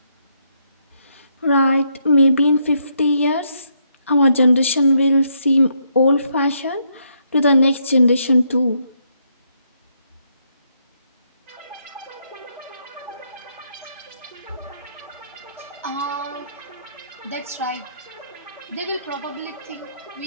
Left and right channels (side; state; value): both; inverted; correlation -0.75